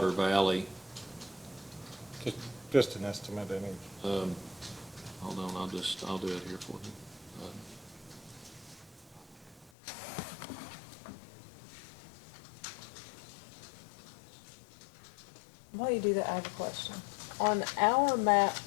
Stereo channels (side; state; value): right; drops out; at 9.7 s